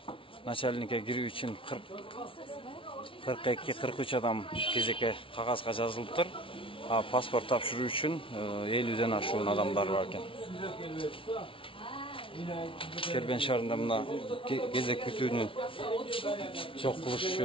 начальникке кирүү үчүн 42-43 адам кезекке кагазга жазылыптыр. Паспорт тапшыруу үчүн 50ден ашуун адамдар бар экен. Кербен шаарында мына кезек күтүүнү чок кылыш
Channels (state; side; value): late; right; 0.25 ms